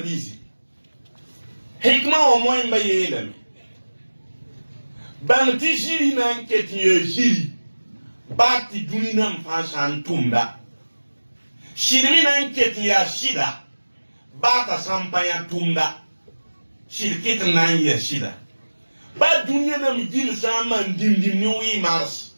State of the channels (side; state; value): both; inverted; correlation -1.00